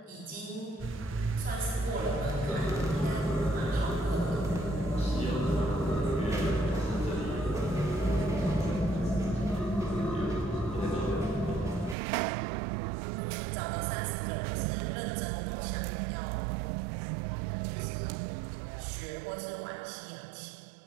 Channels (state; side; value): drops out; left; at 12.0 s